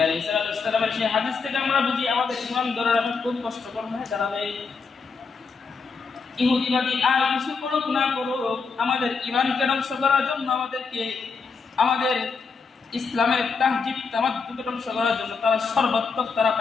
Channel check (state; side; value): quieter; right; 5.0 dB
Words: আলাইহিস সালামের সেই হাদিস থেকে আমরা বুঝি আমাদের ঈমান ধরে রাখা খুব কষ্টকর হয়ে দাঁড়াবে। ইহুদিবাদী আর কিছু করুক না করুক, আমাদের ঈমানকে ধ্বংস করার জন্য আমাদের ইসলামের তাহজিব তামাদ্দুদ ধ্বংস করার জন্য তারা সর্বাত্মক তারা